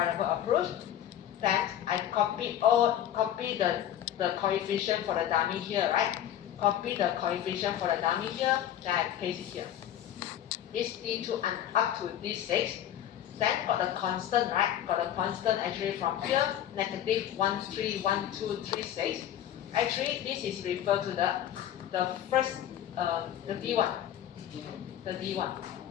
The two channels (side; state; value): right; quieter; 11.1 dB